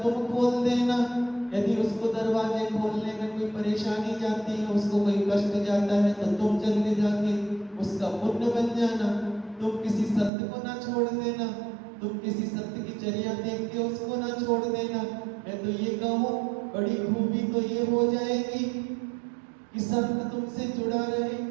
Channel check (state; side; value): drops out; left; at 10.3 s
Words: खोल देना। यदि उसको दरवाजे खोलने में कोई परेशानी जाती है, उसको कोई कष्ट जाता है, तो तुम जल्दी जाके उसका पुण्य बन जाना। तुम किसी संत को ना छोड़ देना, तुम किसी संत की चर्या देख के उसको ना छोड़ देना। मैं तो ये कहूँ, बड़ी खूबी तो ये हो जाएगी कि संत तुमसे जुड़ा रहे,